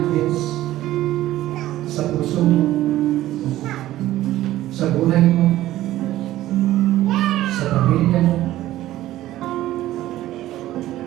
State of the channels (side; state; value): left; quieter; 14.7 dB